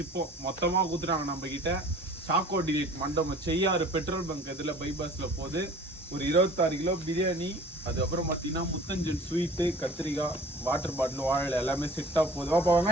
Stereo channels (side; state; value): both; normal; correlation 0.46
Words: மொத்தமா கொடுத்துட்டாங்க நம்ம கிட்ட. சாக்கோ டிலீட் மண்டபம் செய்யாறு பெட்ரோல் பங்க் இதில் பைபாஸ்ல போகுது. ஒரு 26 கிலோ பிரியாணி, அதுக்கப்புறம் பார்த்தீங்கன்னா முத்தஞ்சல் ஸ்வீட்டு, கத்திரிக்காய், வாட்டர் பாட்டில், வாழை எல்லாமே செட்டாக போகுது. வாப்பா